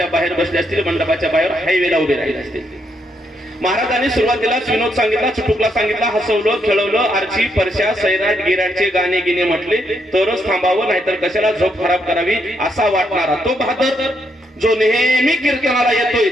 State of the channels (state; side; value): normal; both; correlation 0.77